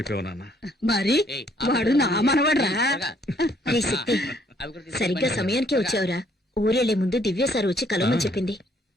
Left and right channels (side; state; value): both; normal; correlation 0.65